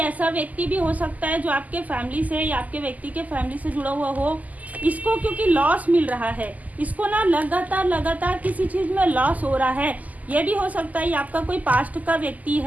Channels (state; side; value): late; left; 0.078 ms